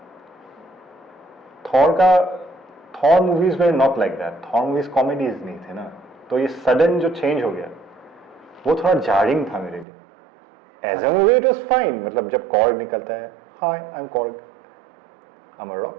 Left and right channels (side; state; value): left; drops out; at 9.9 s